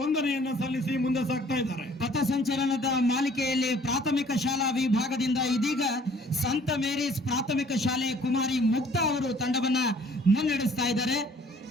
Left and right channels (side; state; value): both; normal; correlation 0.56